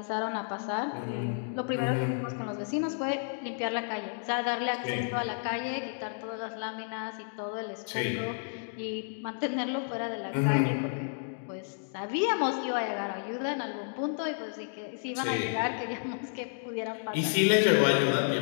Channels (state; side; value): silent; right; digital silence